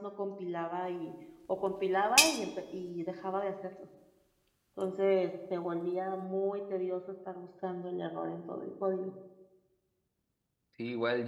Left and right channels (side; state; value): both; identical; correlation 1.00